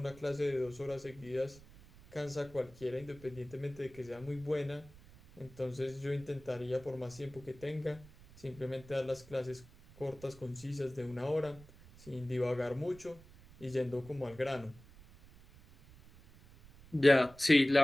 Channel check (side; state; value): right; noise; rumble, 21 dB below the sound